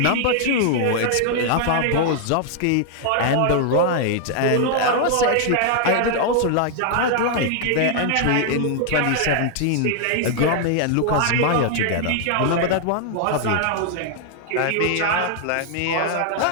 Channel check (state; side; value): different; both; correlation 0.00